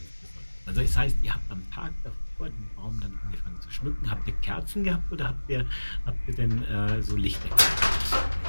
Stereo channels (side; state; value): both; inverted; correlation -1.00